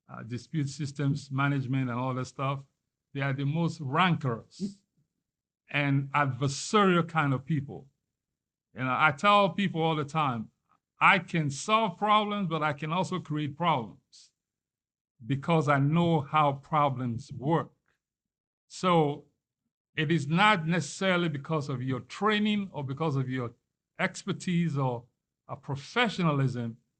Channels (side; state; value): both; identical; correlation 1.00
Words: dispute systems management and all that stuff. They are the most rancorous and adversarial kind of people. And I tell people all the time, I can solve problems, but I can also create problems because I know how problems work. So it is not necessarily because of your training or because of your expertise or a professionalism.